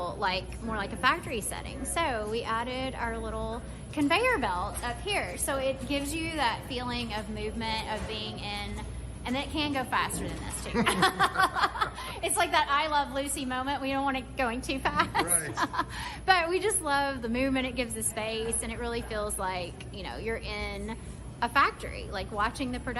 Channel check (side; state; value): both; identical; correlation 1.00